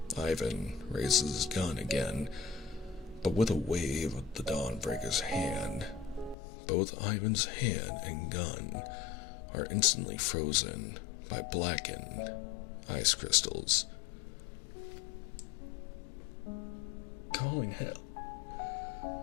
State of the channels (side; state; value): right; drops out; at 6.4 s